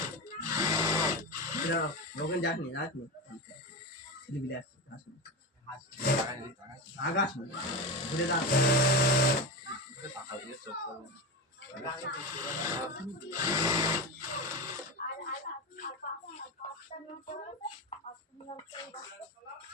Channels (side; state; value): both; normal; correlation 0.21